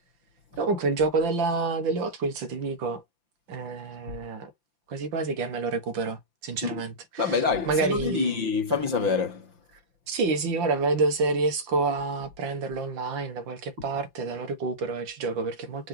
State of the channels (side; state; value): left; late; 5.8 ms